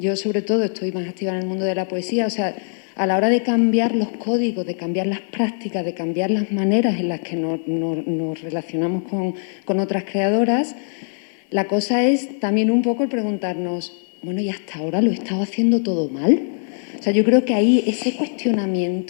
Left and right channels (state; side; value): silent; right; 58 dB below the other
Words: sobre todo estoy más activa en el mundo de la poesía, o sea, a la hora de cambiar los códigos, de cambiar las prácticas, de cambiar las maneras en las que nos relacionamos con otras creadoras, la cosa es también un poco el preguntarnos, bueno, ¿y hasta ahora lo he estado haciendo todo mal? O sea, yo creo que ahí ese